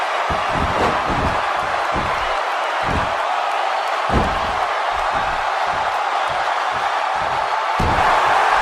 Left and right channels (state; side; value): identical; both; correlation 1.00